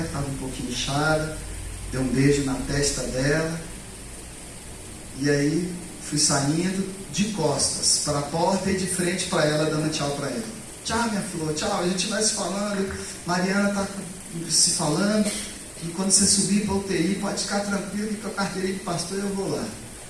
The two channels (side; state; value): both; identical; correlation 1.00